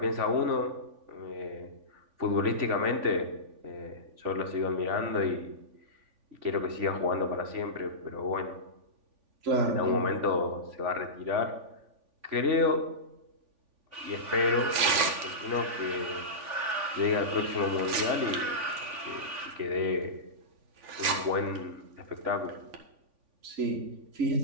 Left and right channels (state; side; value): late; left; 3.5 ms